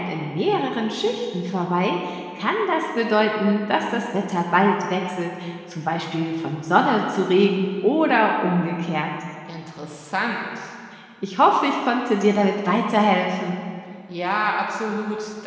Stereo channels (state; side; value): identical; both; correlation 1.00